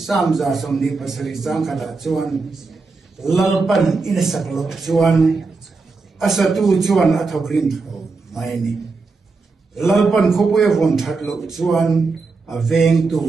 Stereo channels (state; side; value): quieter; left; 4.1 dB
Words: za som ni pasari chang khala chuan lalpan in a saklo chuan asatu chuan athokrin mai ni lalpan khope von thatlo chuan a veng tu